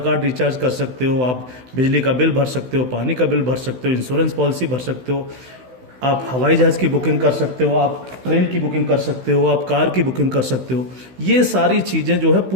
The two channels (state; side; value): late; left; 16 ms